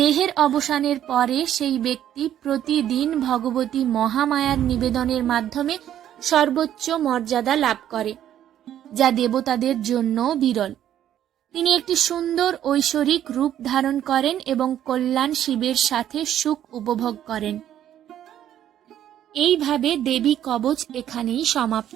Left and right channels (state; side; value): quieter; left; 11.1 dB